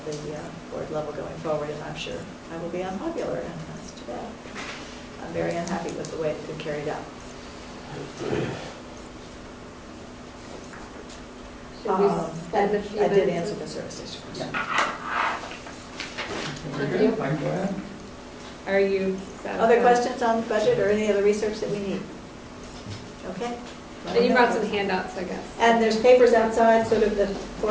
the board level going forward, and I'm sure I will be unpopular, and that's too bad. I'm very unhappy with the way it's been carried out. Should we spend a few I did minutes? answer the service station question. Thank you. Are you satisfied? Other questions on the budget or any other research that we need? Okay. And you brought some handouts, I guess. And there's papers outside, sort of the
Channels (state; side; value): identical; both; correlation 1.00